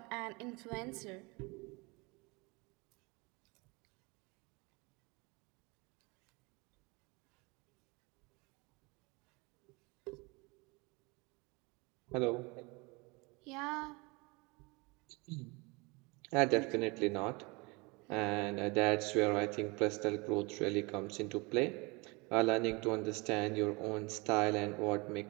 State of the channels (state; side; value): quieter; left; 27.3 dB